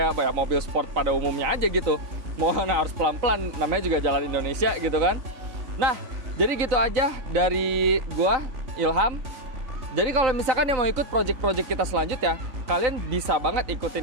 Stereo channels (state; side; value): late; left; 3.8 ms